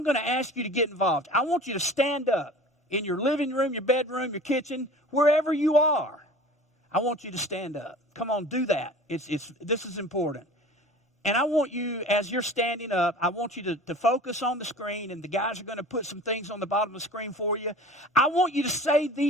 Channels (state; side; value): normal; both; correlation 0.41